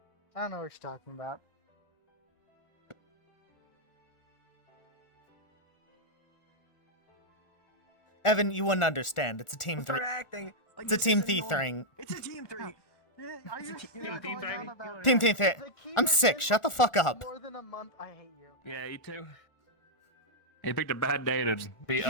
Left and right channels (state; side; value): late; right; 1.4 ms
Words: I don't know what you're talking about. Evan, you wouldn't understand. It's a team Start three. acting. Like It's a this team is thief annoying. thing. It's a team three. Team thief thing. I'm sick. Shut the fuck up. More than a month, I hate you. Yeah, you too. He picked a bad day to be